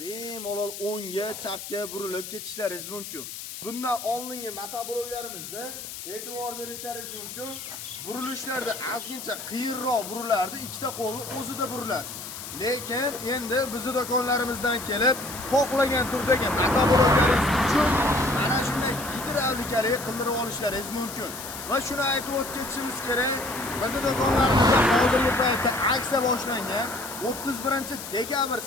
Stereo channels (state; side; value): noise; left; hiss, 10 dB below the sound